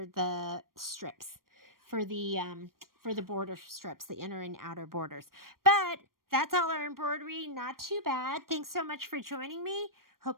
the strips, for the border strips, the inner and outer borders. But that's all our embroidery. Not too bad. Thanks so much for joining me.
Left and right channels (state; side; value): late; left; 0.91 ms